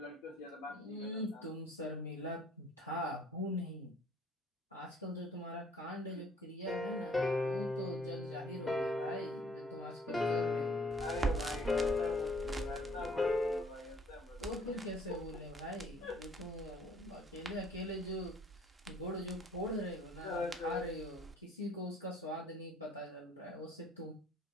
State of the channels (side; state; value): both; normal; correlation 0.59